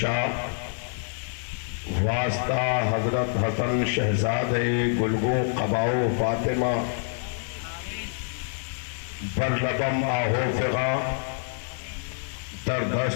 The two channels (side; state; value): right; silent; 60 dB below the other